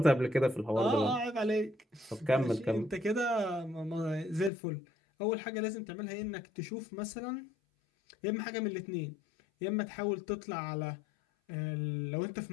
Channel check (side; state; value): right; drops out; at 4.5 s